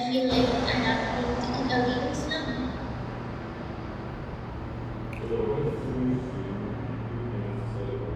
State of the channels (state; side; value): identical; both; correlation 1.00